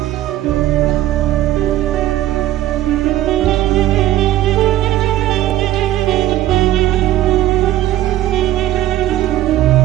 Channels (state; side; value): quieter; left; 14.2 dB